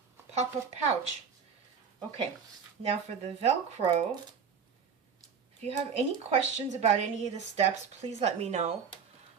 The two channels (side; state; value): left; quieter; 6.5 dB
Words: pop-up pouch. Okay, now for the Velcro, if you have any questions about any of the steps, please let me know.